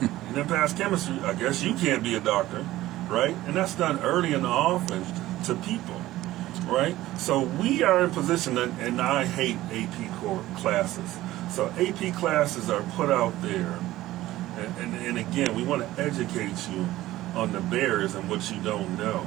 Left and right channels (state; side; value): quieter; left; 15.9 dB